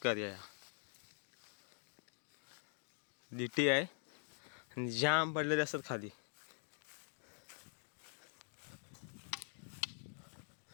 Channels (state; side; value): silent; right; digital silence